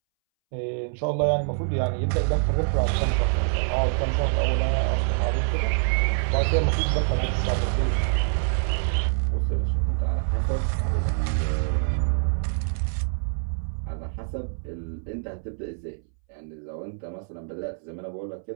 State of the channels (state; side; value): silent; left; 61 dB below the other